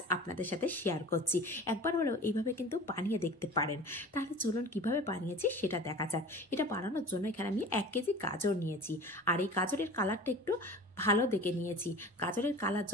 আপনাদের সাথে শেয়ার করছি। একবার হলেও এইভাবে কিন্তু বানিয়ে দেখতে পারেন। তাহলে চলুন কিভাবে বানিয়েছি সেটা দেখা যাক। এটা বানানোর জন্য এখানে আমি 1 কেজি গাজর নিয়েছি, আর এই গাজরের কালারটা একটু ভালো দেখে নিয়েছি। গাজরের কালার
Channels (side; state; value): both; normal; correlation 0.39